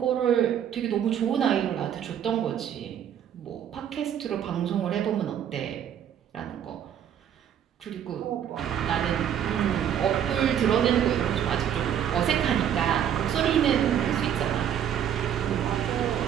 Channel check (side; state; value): left; quieter; 9.5 dB